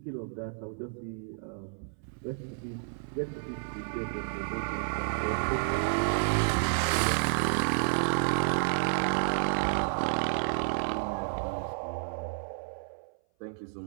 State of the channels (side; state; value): left; silent; 57 dB below the other